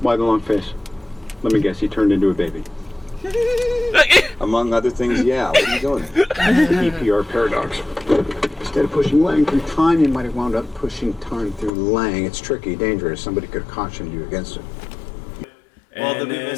Why the long face? Let me guess, he turned into a baby. Among other things, yeah. What are you doing? EPR paradox. Instead of pushing Lang through time, you might have wound up pushing time through Lang. It's tricky, dangerous. Somebody could have cautioned you against it. Well, And the then-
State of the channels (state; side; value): drops out; right; at 11.7 s